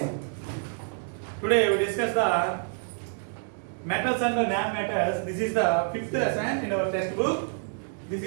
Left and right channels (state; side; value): silent; left; 60 dB below the other